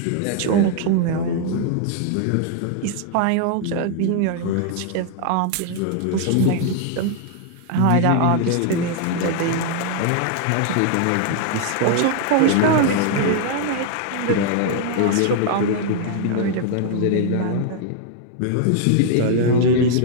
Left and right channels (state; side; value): different; both; correlation 0.00